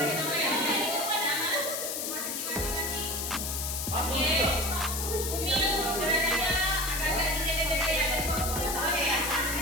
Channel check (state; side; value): noise; left; hiss, 3 dB below the sound